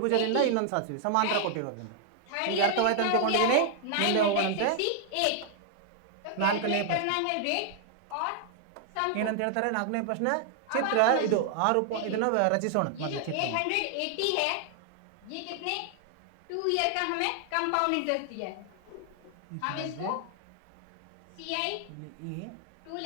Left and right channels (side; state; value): both; different; correlation 0.00